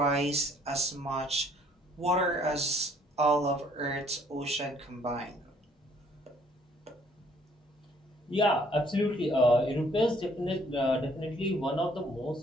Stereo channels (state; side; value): normal; both; correlation 0.62